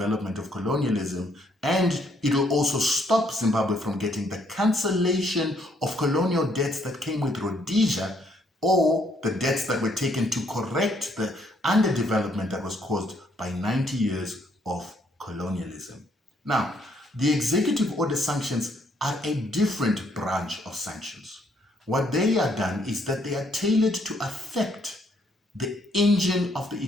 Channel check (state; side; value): normal; both; correlation 0.70